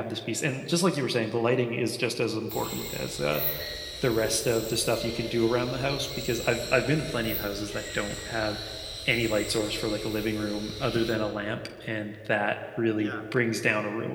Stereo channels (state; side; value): identical; both; correlation 1.00